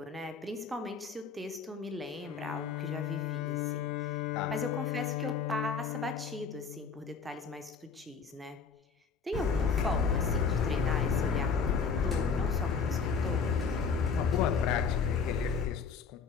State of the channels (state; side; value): quieter; right; 5.6 dB